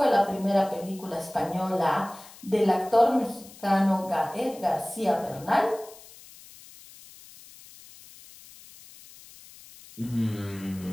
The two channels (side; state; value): left; noise; hiss, 20 dB below the sound